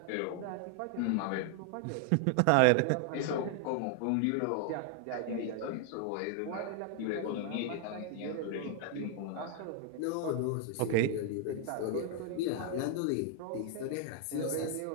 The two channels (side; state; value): both; different; correlation 0.00